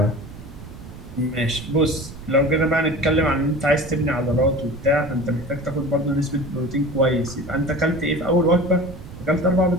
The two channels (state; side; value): noise; right; rumble, 15 dB below the sound